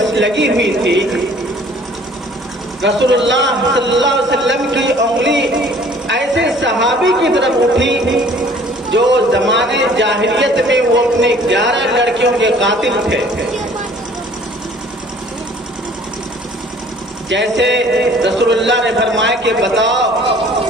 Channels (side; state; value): both; normal; correlation 0.54